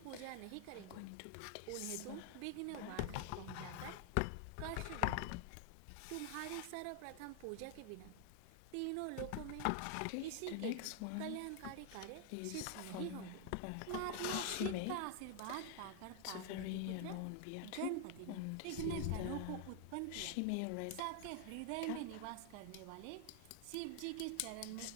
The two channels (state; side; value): different; both; correlation 0.00